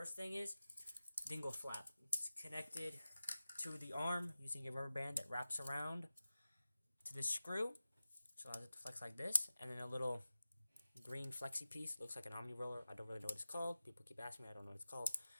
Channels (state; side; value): inverted; both; correlation -0.95